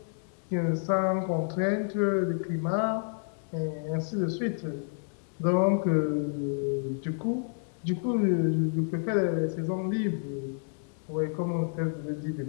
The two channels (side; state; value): right; silent; 58 dB below the other